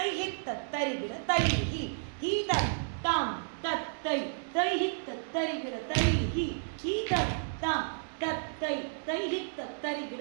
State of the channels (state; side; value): silent; left; digital silence